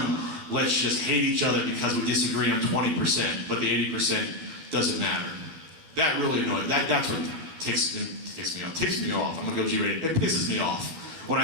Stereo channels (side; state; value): left; late; 12 ms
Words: Let's just hate each other because we disagree on 20%, but the 80% doesn't matter. That really annoys. That's what ticks me off. I'm going to go G-rated. It pisses me off when